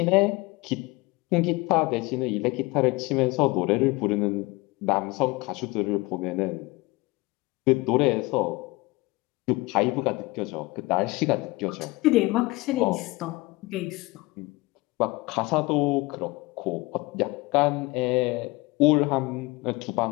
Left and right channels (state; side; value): quieter; right; 22.9 dB